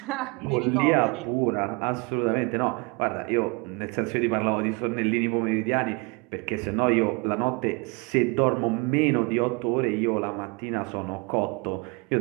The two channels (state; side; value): quieter; left; 28.7 dB